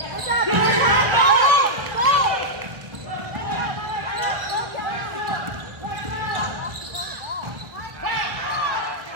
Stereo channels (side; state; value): left; late; 1.6 ms